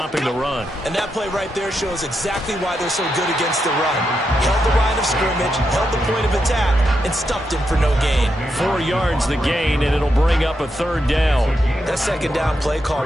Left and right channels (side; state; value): both; normal; correlation 0.84